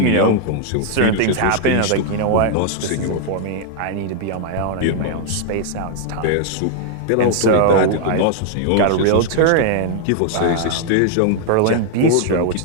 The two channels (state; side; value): different; both; correlation 0.00